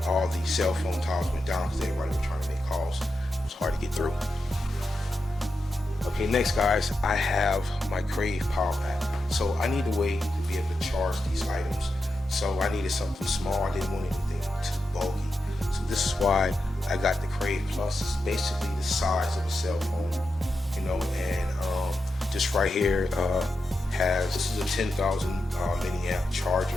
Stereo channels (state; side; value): normal; both; correlation 0.88